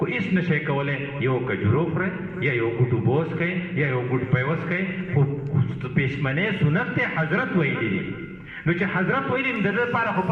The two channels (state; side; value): identical; both; correlation 1.00